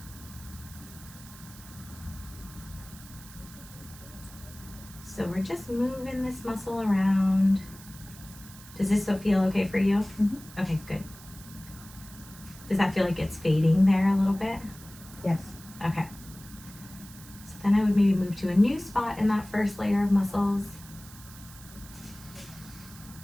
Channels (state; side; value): noise; right; hiss, 18 dB below the sound